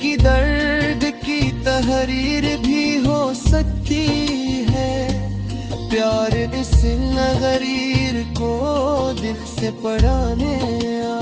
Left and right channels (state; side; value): identical; both; correlation 1.00